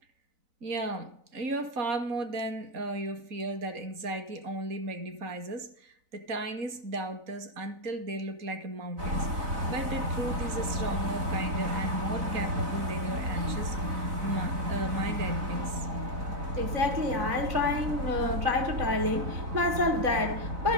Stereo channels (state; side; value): late; left; 4.0 ms